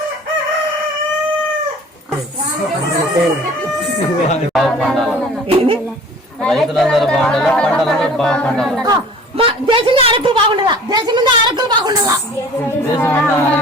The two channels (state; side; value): normal; both; correlation 0.47